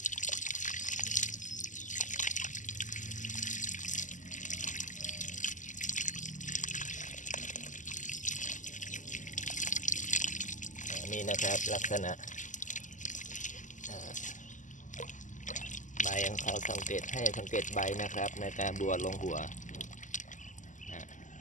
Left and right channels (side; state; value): right; late; 0.37 ms